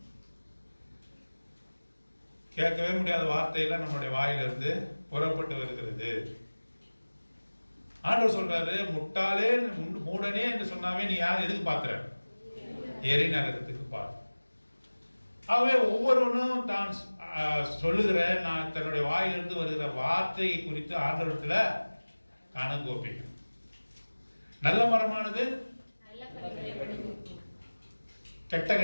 கேட்கவே முடியாத வார்த்தையெல்லாம் நம்மளுடைய வாயிலிருந்து புறப்பட்டு வருகிறது. ஆண்டவர் சொல்றாரு, முட்டாளே மூடனே என்று சொன்னாவே நீ யார் எதுக்கு பாக்குற? எரி நரகத்துக்கு பார். ஆகவே ஒவ்வொருவனும் தான் சொல்லுகிற நான் தன்னுடைய வாயிலிருந்து வருகிற வார்த்தையை குறித்து ஆண்டவரத்துல கணக்கு ஒப்பிக்கும். நல்ல மரமானது கெட்ட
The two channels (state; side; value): inverted; both; correlation -1.00